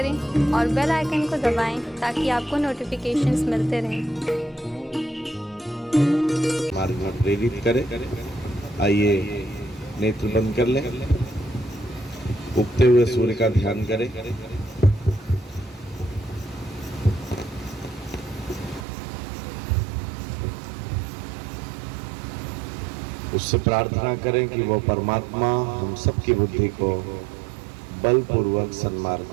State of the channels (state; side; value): drops out; left; at 18.9 s